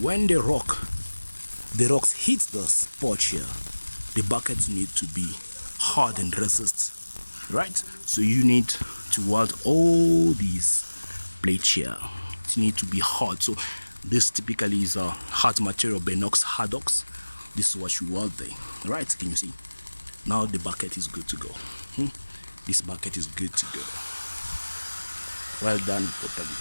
when the rocks hit the spot here, the buckets need to be hard and resist, right? So you need to weld all these plates here. It need to be hard. So this typically is a hard material, Benox Hardox. This is what you weld there, right? Can you see? Now the bucket is good to go. This bucket is good to go. Well done properly.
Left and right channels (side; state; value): both; inverted; correlation -1.00